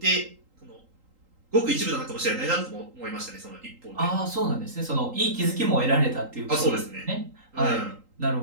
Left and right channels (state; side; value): late; left; 3.8 ms